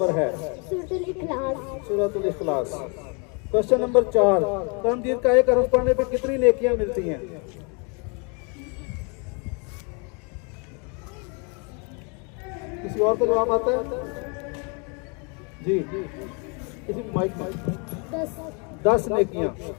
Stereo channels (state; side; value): quieter; right; 34.7 dB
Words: है? सूरतुल इखलास। सूरतुल इखलास। क्वेश्चन नंबर 4, कुरान मजीद का एक हरफ पढ़ने पे कितनी नेकियां मिलती हैं? किसी और का जवाब आता है? जी, किसी माइक में 10 नेकियां।